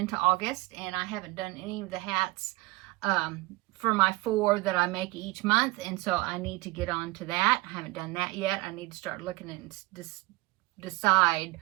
August, and I haven't done any of the hats for my 4 that I make each month, and so I need to get on to that. I haven't done that yet. I need to start looking and decide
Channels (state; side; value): quieter; left; 21.5 dB